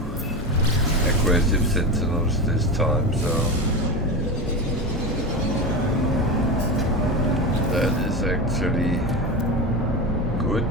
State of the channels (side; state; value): both; normal; correlation 0.22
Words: aggressive sentinels this time, so that is actually good,